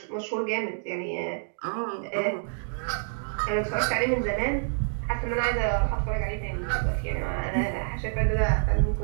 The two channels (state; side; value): silent; left; digital silence